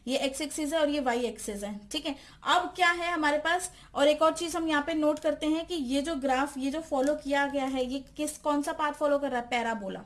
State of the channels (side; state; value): both; identical; correlation 1.00